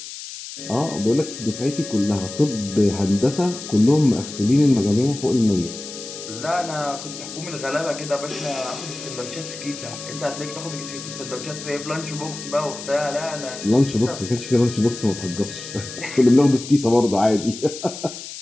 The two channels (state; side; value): noise; left; hiss, 11 dB below the sound